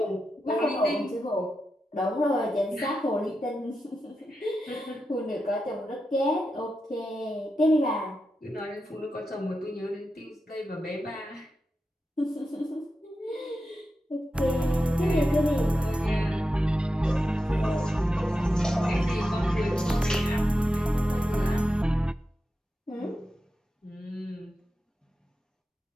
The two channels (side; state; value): both; normal; correlation 0.89